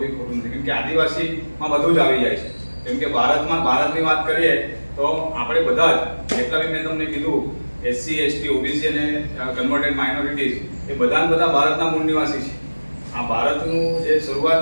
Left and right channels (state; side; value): inverted; both; correlation -1.00